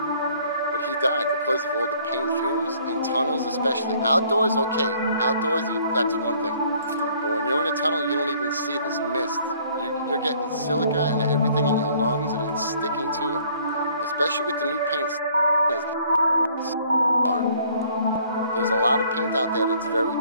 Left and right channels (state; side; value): inverted; both; correlation -0.59